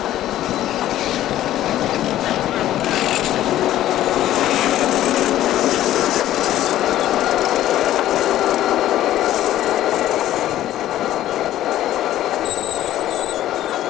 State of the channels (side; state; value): right; quieter; 13.3 dB